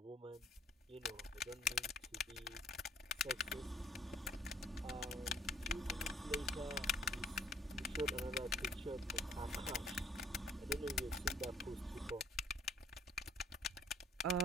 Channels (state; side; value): normal; both; correlation 0.59